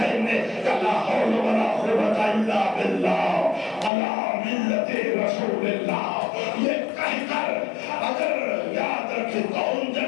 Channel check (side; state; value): right; drops out; at 3.9 s